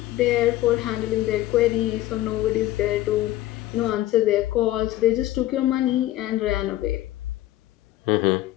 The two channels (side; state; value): right; quieter; 15.2 dB